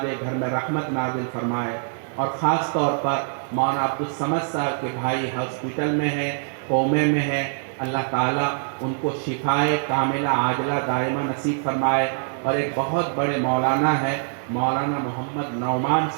घर में रहमत नाजिल फरमाए। और ख़ास तौर पर मौलाना अब्दुल समद साहब के भाई हॉस्पिटल में हैं, कोमे में हैं, अल्लाह ताला उनको शिफाए कामिला आजला दायमा नसीब फरमाए। और एक बहुत बड़े मौलाना है, मौलाना मोहम्मद नौमान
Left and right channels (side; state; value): left; silent; digital silence